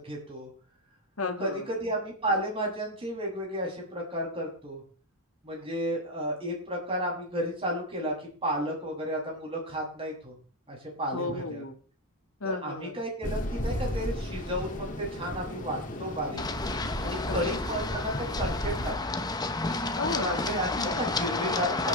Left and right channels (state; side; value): normal; both; correlation 0.13